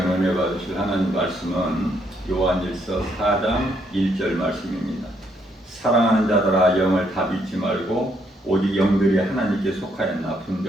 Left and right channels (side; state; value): both; normal; correlation 0.73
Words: 은혜 받으실 하나님 말씀은 요한일서 4장 1절 말씀입니다. 사랑하는 자들아 영을 다 믿지 말고 오직 영들이 하나님께 속하였나